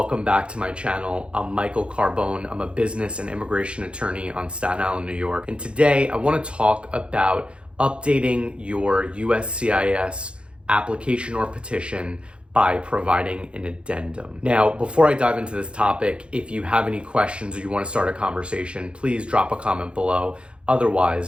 back to my channel. I'm Michael Carbone. I'm a business and immigration attorney on Staten Island, New York. And today I want to talk about updating your USCIS application or petition by providing an addendum. Now, before I dive into this topic, if you have any questions or you want to start a conversation, please drop a comment below.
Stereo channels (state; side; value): late; left; 0.057 ms